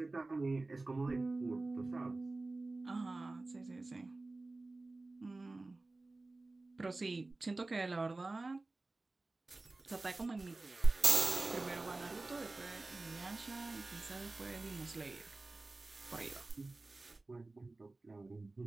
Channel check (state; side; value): quieter; left; 3.2 dB